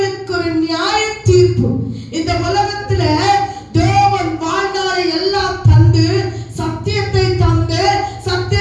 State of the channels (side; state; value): both; identical; correlation 1.00